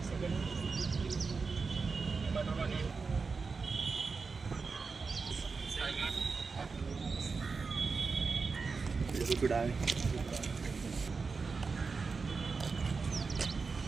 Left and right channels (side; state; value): left; quieter; 4.6 dB